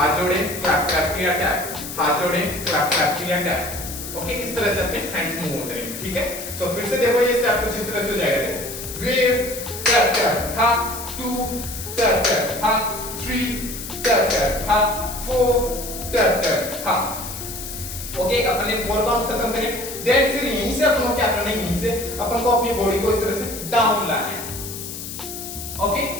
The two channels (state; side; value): noise; left; hiss, 9 dB below the sound